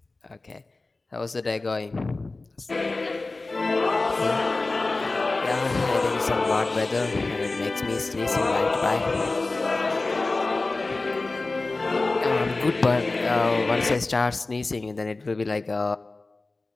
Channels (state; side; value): quieter; right; 3.3 dB